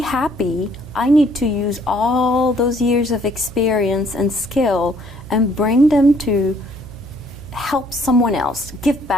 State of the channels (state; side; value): noise; right; hum, 15 dB below the sound